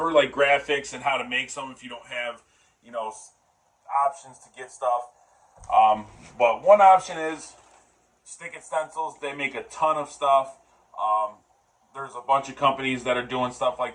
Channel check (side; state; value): both; identical; correlation 1.00